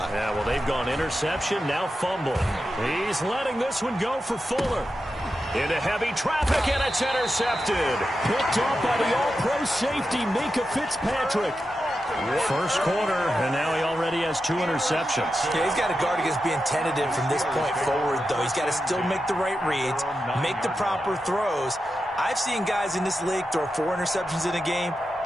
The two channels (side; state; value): both; normal; correlation 0.90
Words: Yeah, well, they've gone interception, now fumble. He's letting this one go for Fuller. Into heavy traffic, and it's intercepted. Picked off by the all-pro safety, Minka Fitzpatrick. First quarter, and now he already has 2 interceptions. Yeah, he's got to guard against being tentative from this point forward, though. He's got to still make the right reads, make the proper throws. I've seen guys in this league throw 4 interceptions in a game